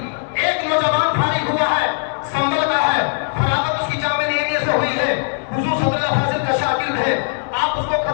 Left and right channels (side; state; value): right; silent; digital silence